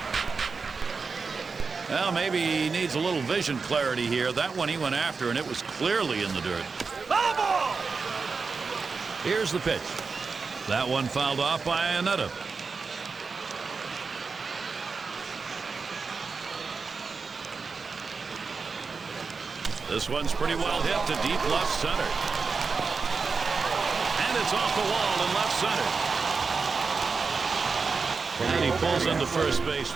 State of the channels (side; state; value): left; quieter; 4.8 dB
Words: Well, maybe he needs a little vision clarity here. That one he went after, and it was clearly in the dirt. Here's the pitch. That one fouled off by Anetta. This one's pretty well hit to deep left center. And it's off the wall in left center. And he pulls into first base